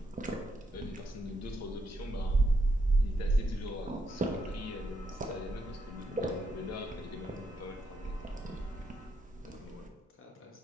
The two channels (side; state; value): both; normal; correlation 0.79